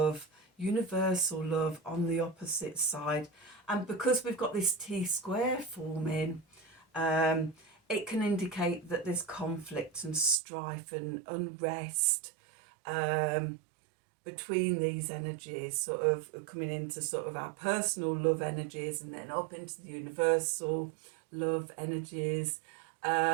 universal love on the opposite side. And because we've got this T-square forming, it can indicate that there's conflict and strife and unrest between these energies, sort of coming into sort of our personal love energies and then up into the universal love energies.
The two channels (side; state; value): left; drops out; at 10.4 s